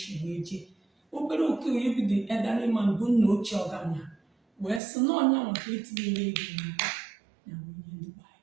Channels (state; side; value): drops out; left; at 4.8 s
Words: wee jee obere oke onye bido edarịman bụ nna ochie ọgama wee sị na ọnya maka etinyere ego n'aka ya onye ndị gbaa